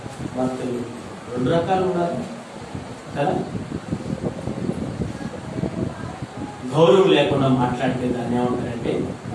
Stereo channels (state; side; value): identical; both; correlation 1.00